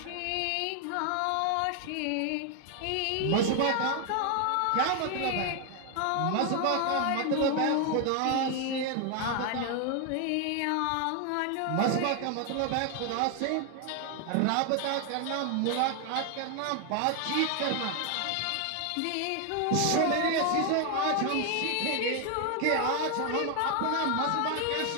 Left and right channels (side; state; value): both; different; correlation 0.01